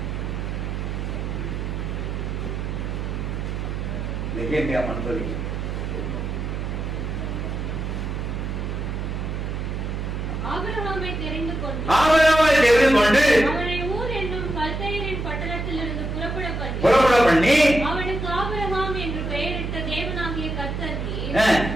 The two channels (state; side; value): noise; right; hum, 3 dB below the sound